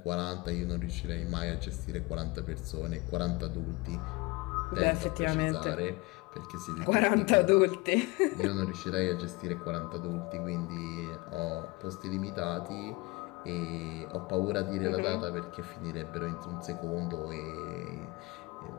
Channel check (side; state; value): right; quieter; 23.4 dB